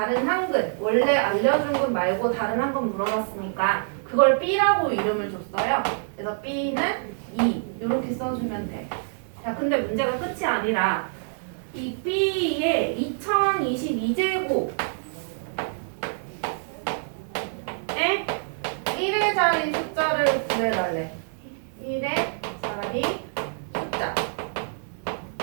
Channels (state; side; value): silent; left; digital silence